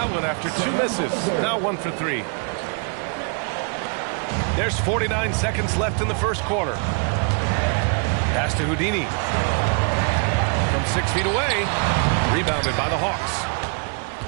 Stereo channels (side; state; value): left; quieter; 37.6 dB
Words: one after 2 misses. Now 1 for 3. There's 49 seconds left in the first quarter. Pass to Houdini. From 6 feet away. Rebounded by the Hawks.